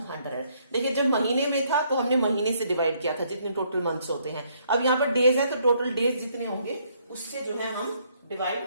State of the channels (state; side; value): inverted; both; correlation -0.69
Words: 100। देखिए जब महीने में था तो हमने महीने से डिवाइड किया था, जितने टोटल मंथ्स होते हैं। अब यहाँ पर डेज है तो टोटल डेज जितने होंगे उससे जो है हम डिवाइड